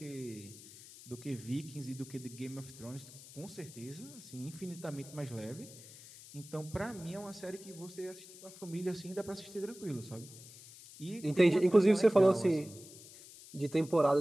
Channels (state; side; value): noise; left; hiss, 18 dB below the sound